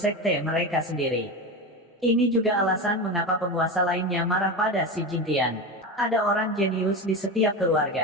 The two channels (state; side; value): normal; both; correlation 0.21